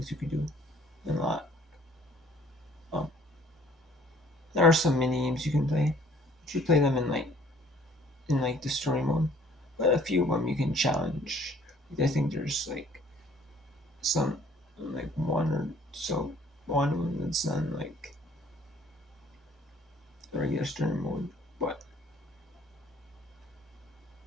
you could do than a lot. Um, there are some mini games you can play. You should play them in the story mode, but a few of them you can challenge. I think there's like some like one or so one of them that's done like the regular story mode, but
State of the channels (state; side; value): normal; both; correlation 0.56